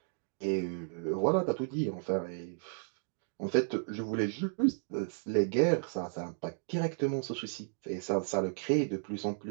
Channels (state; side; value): silent; left; digital silence